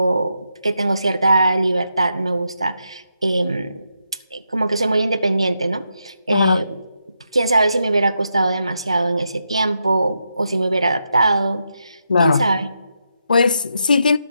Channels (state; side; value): inverted; both; correlation -0.83